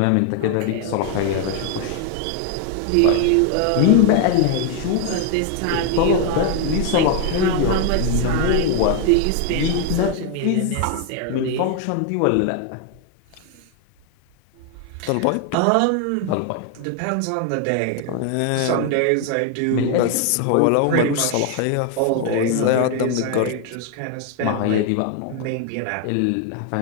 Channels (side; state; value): both; different; correlation 0.01